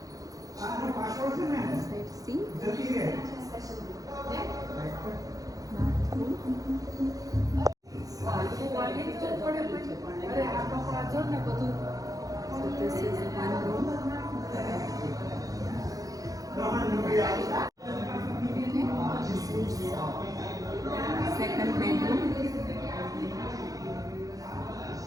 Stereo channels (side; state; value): left; late; 0.17 ms